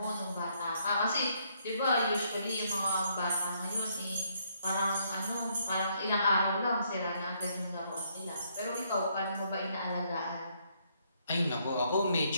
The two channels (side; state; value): both; inverted; correlation -0.71